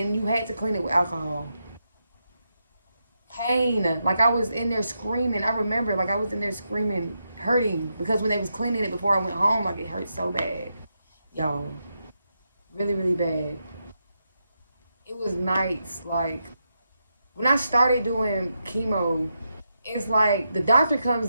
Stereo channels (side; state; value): both; inverted; correlation -0.85